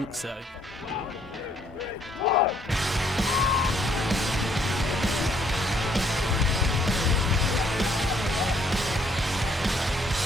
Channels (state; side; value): normal; both; correlation 0.66